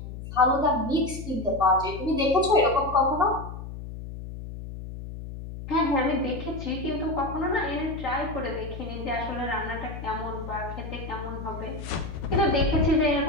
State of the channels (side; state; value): left; noise; hum, 10 dB below the sound